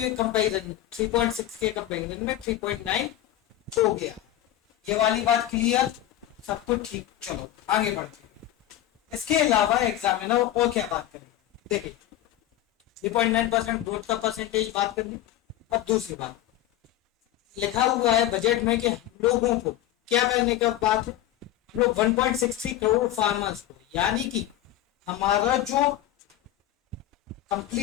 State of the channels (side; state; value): right; quieter; 12.9 dB